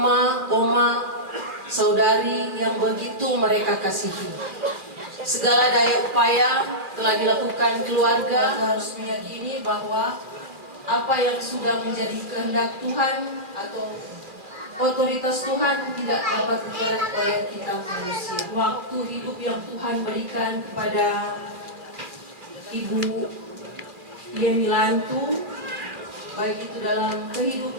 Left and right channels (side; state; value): left; late; 2.4 ms